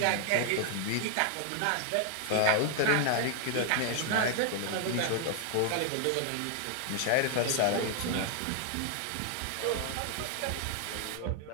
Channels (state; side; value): different; both; correlation 0.00